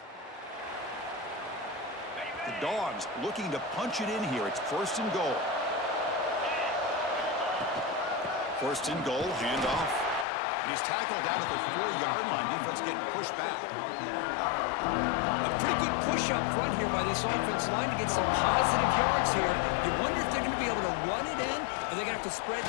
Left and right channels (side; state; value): right; drops out; at 10.2 s